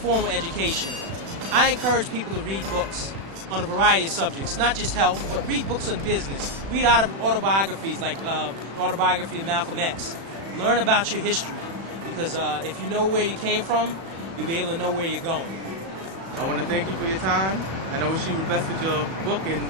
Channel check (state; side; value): late; left; 36 ms